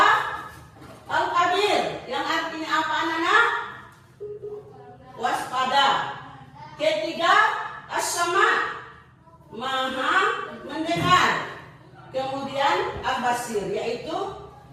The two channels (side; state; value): both; identical; correlation 1.00